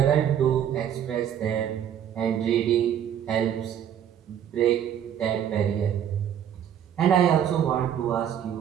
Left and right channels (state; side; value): quieter; left; 9.5 dB